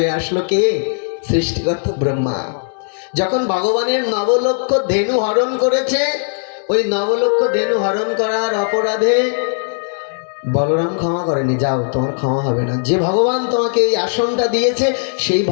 আসলো কে? সৃষ্টিকর্তা ব্রহ্মা। যখন ভগবানের নবলক্ষ ধেনু হরণ করেছে, ওই নবলক্ষ ধেনু হরণ করার অপরাধে বলরাম ক্ষমা করেনি, যাও তোমার ক্ষমা হবে না। যে ভগবান তোমাকে এই আসনটা দিয়েছে সেই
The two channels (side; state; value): right; silent; 68 dB below the other